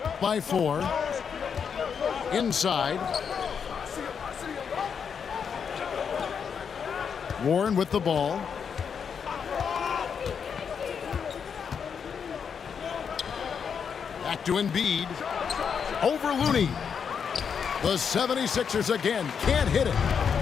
by 4. Inside. Warren with the ball. Back to Embiid. Over Looney. The 76ers again can't hit it.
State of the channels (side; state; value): right; quieter; 6.8 dB